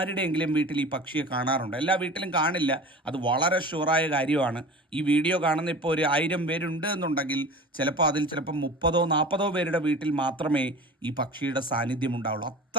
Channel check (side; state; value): both; normal; correlation 0.37